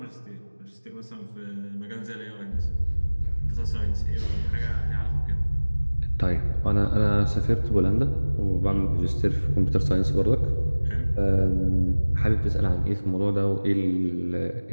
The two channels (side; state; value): both; inverted; correlation -1.00